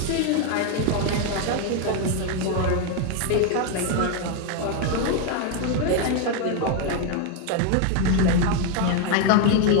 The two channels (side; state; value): both; different; correlation 0.01